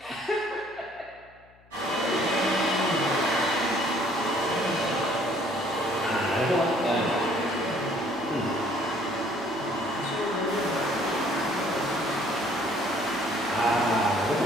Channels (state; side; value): noise; left; hum, 29 dB below the sound